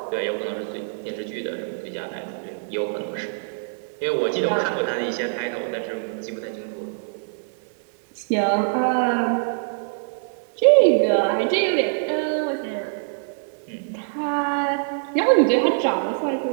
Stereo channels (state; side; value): silent; left; digital silence